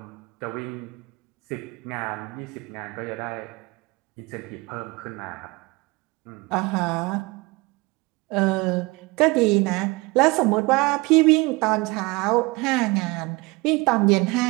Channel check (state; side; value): quieter; left; 24.5 dB